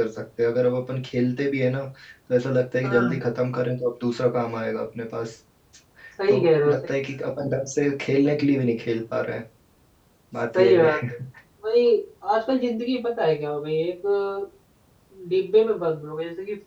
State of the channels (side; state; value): both; identical; correlation 1.00